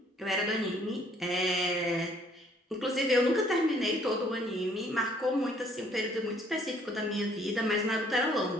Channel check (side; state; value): both; normal; correlation 0.62